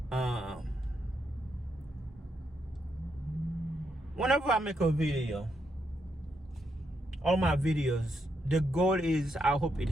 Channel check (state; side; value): normal; both; correlation 0.80